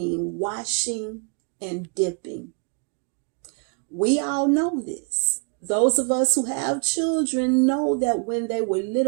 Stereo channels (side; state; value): left; quieter; 37.5 dB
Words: washing and dipping. We all know this. Those of us who have children know that when they were